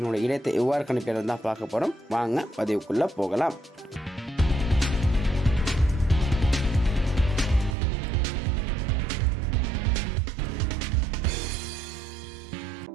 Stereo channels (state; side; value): drops out; left; at 7.8 s